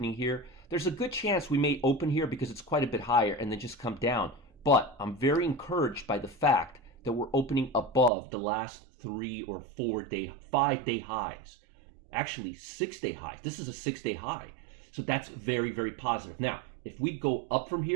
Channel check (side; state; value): left; drops out; at 8.1 s